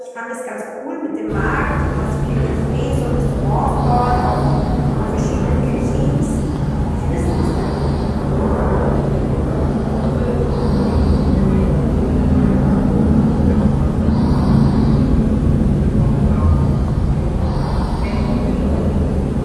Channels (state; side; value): identical; both; correlation 1.00